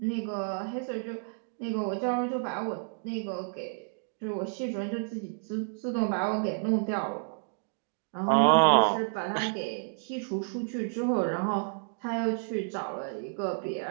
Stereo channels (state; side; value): silent; left; digital silence